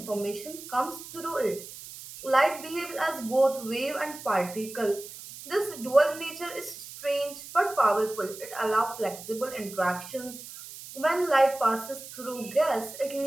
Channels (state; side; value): noise; right; hiss, 14 dB below the sound